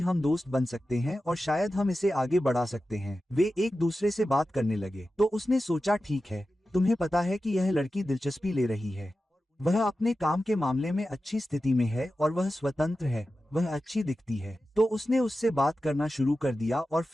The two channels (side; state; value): both; normal; correlation 0.93